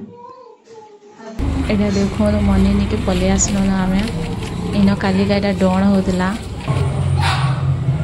एडा देखो मनी नहीं के पलि आसलो ना आमे इन कालिका एडा डण होतला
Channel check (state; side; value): identical; both; correlation 1.00